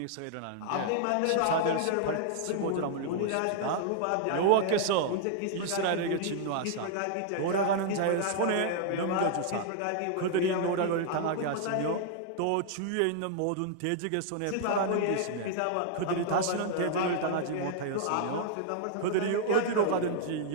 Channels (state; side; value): different; both; correlation -0.01